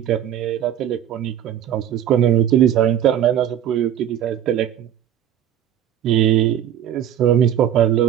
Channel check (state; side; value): quieter; left; 10.4 dB